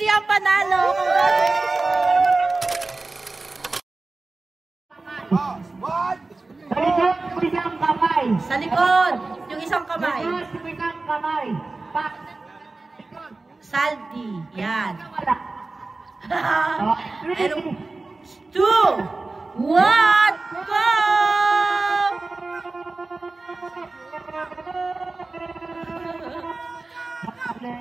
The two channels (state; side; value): quieter; left; 3.5 dB